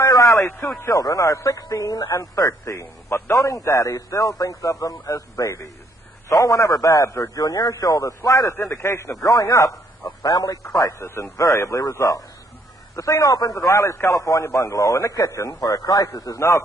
Riley's two children are 16 and 13, but doting daddy still thinks of them as babies. So whenever Babs or Junior show the slightest indication of growing up, a family crisis invariably results. The scene opens at Riley's California bungalow in the kitchen, where a crisis is now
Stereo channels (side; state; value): both; normal; correlation 0.69